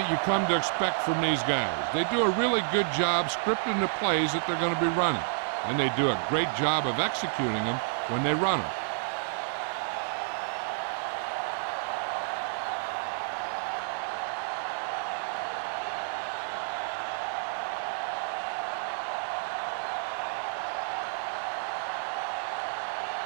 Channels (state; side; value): silent; left; 58 dB below the other